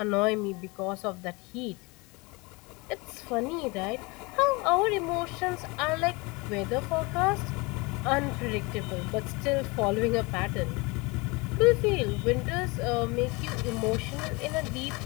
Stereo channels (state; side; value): quieter; right; 26.1 dB